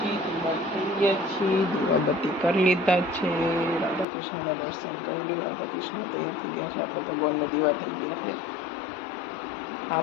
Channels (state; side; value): drops out; right; at 4.0 s